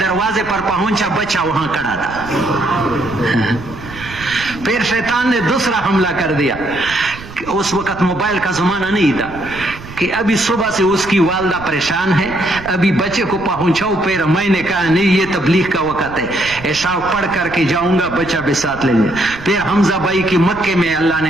پر پہنچا بچہ وہاں کھڑا تھا. پھر شیطان نے دوسرا حملہ کر دیا. اس وقت موبائل کا زمانہ نہیں تھا کہ ابھی صبح سے اس کی والدہ پریشان ہے, ابھی بچے کو پہنچاؤ. پھر میں نے کہا نہیں, یہ تبلیغ کا وقت ہے, عشاء پڑھ کر کے جاؤں گا, بچہ بھی ساتھ لیں گے. پھر حمزہ بھائی کی مکے میں اللہ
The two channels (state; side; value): noise; right; rumble, 15 dB below the sound